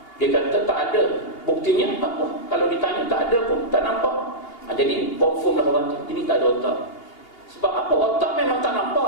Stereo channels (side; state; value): right; late; 2.8 ms